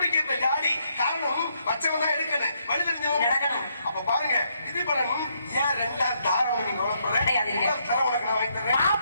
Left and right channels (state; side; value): inverted; both; correlation -0.75